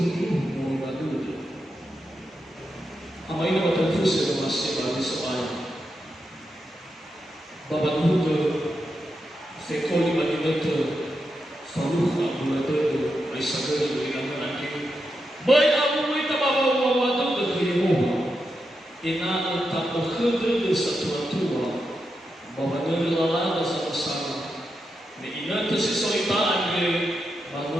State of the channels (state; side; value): normal; both; correlation 0.86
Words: mau batu ama ini betul fusi masih bagi soal bawa tu Sekoli bagi betul, faluh abu betul, aisyah betul dengan nanti. Baik abu kita bawa waktu ke Yehova, ina tak berkhidmat satu tua, bawa dari lalana sama-sama. Ina tersisoritaan ke